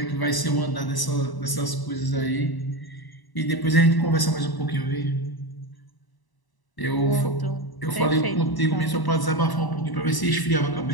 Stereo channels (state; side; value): late; right; 1.0 ms